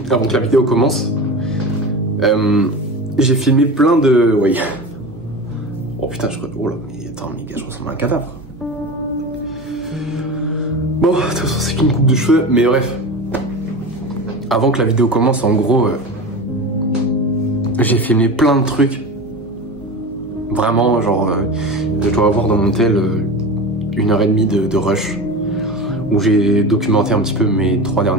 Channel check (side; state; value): both; normal; correlation 0.28